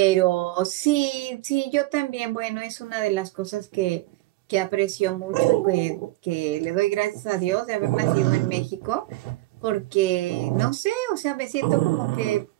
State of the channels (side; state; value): left; quieter; 18.9 dB